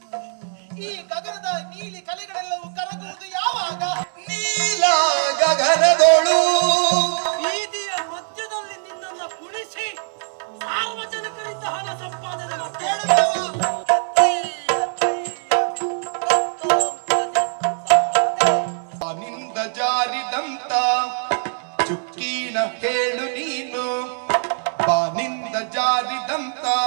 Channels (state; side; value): silent; left; 64 dB below the other